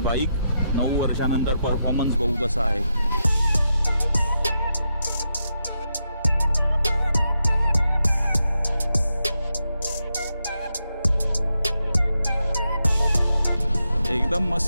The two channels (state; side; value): inverted; both; correlation -0.85